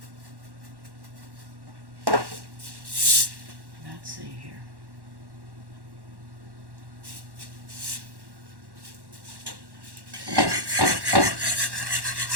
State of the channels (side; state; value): left; late; 1.1 ms